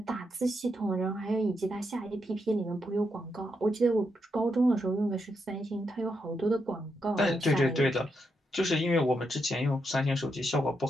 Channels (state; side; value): normal; both; correlation 0.82